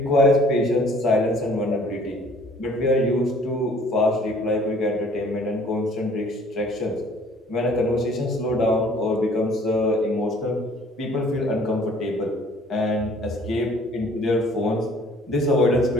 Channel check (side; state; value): both; normal; correlation 0.55